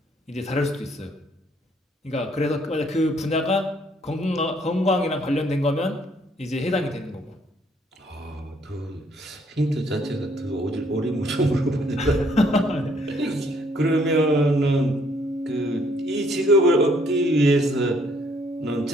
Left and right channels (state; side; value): normal; both; correlation 0.66